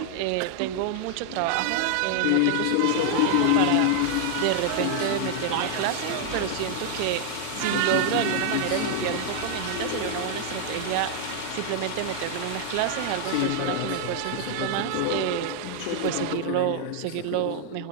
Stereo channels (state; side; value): different; both; correlation 0.00